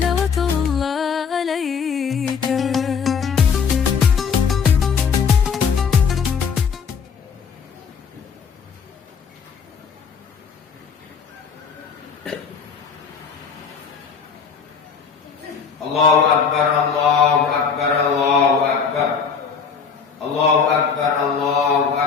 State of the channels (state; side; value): quieter; right; 6.2 dB